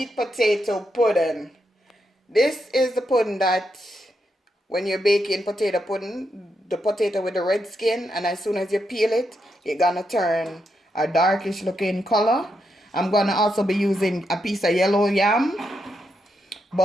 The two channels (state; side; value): normal; both; correlation 0.83